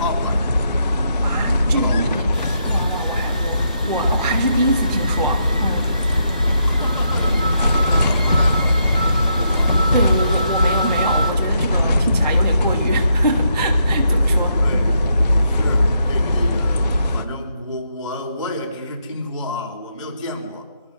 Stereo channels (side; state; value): both; inverted; correlation -0.78